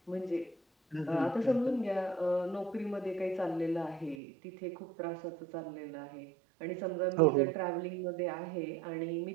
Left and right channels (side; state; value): left; drops out; at 4.2 s